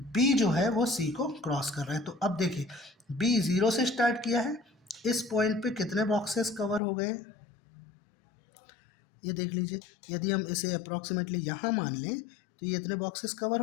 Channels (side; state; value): right; drops out; at 6.8 s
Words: जो है वो सी को क्रॉस कर रहा है। तो अब देखिए बी 0 से स्टार्ट किया है, इस पॉइंट पे कितने बॉक्सेस कवर हो गए ये देख लीजिए। यदि हम इसे अप्रॉक्सीमेटली यहाँ मान लें तो ये इतने बॉक्सेस कवर